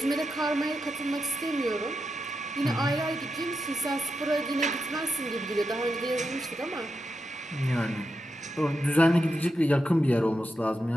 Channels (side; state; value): both; normal; correlation 0.87